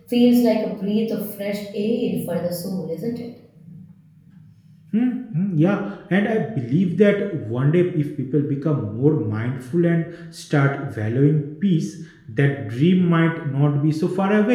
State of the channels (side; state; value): both; identical; correlation 1.00